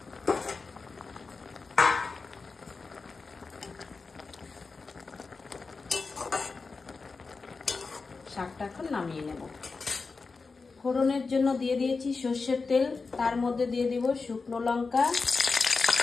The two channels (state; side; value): quieter; right; 4.3 dB